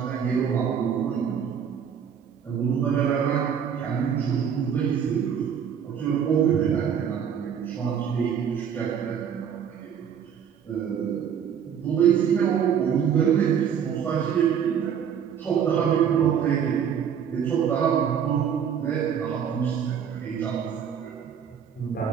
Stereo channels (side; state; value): left; quieter; 8.0 dB